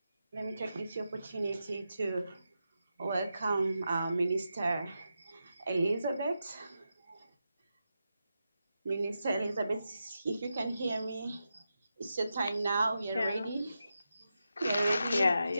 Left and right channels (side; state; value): both; inverted; correlation -0.88